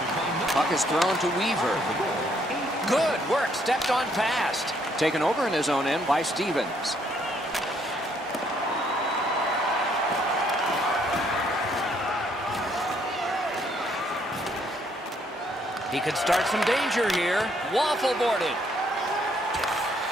Puck is thrown to Weaver. Good work, stepped on past. Taken over in his own end by Stevens. He could start some danger here. Waffle boarded.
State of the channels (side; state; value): both; normal; correlation 0.69